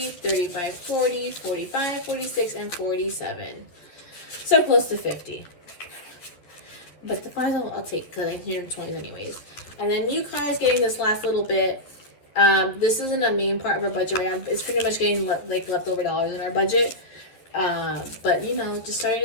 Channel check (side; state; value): right; late; 11 ms